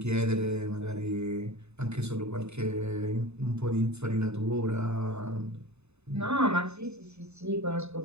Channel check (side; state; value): left; late; 0.81 ms